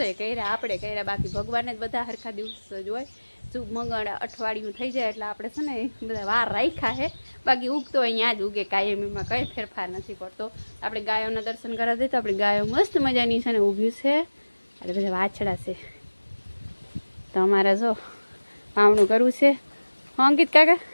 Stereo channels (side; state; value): both; inverted; correlation -1.00